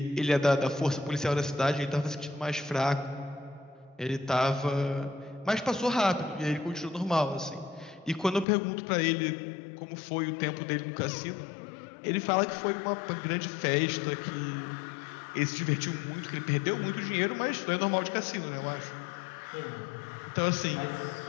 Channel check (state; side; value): drops out; right; at 8.5 s